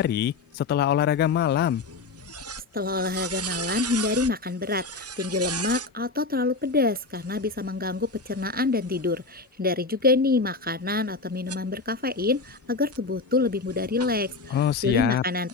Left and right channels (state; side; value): quieter; right; 3.9 dB